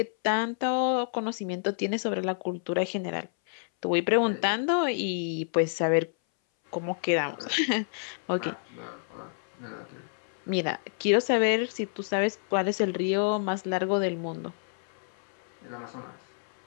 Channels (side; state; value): right; silent; 59 dB below the other